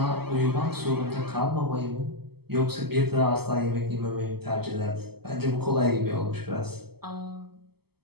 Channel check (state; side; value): late; left; 0.96 ms